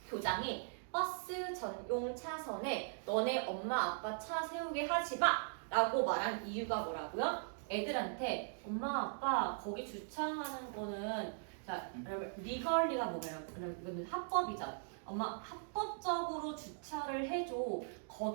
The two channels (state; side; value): silent; left; digital silence